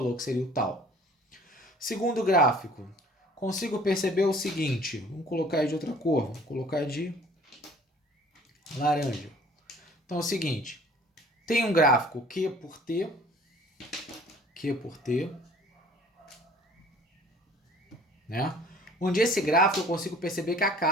que seria o tal. Segundo gráfico, consigo perceber o seguinte, vamos colocar aí de outra cor, vamos colocar de laranja. Então é o seguinte, tem um gráfico Q por T, né? Onde esse gráfico eu consigo perceber que a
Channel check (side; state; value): both; normal; correlation 0.51